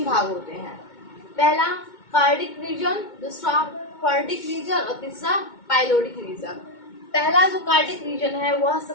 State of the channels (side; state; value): right; late; 2.2 ms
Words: भाग होते हैं। पहला कार्डिक रीजन, दूसरा फर्डिक रीजन और तीसरा पाइलोडिक रीजन। पहला जो कार्डिक रीजन है वह